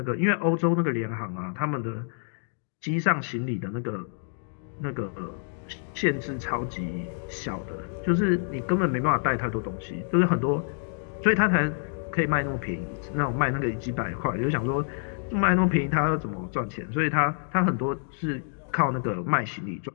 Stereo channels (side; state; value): right; silent; digital silence